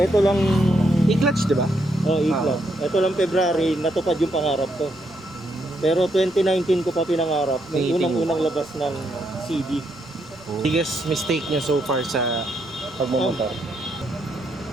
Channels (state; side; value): noise; left; rumble, 28 dB below the sound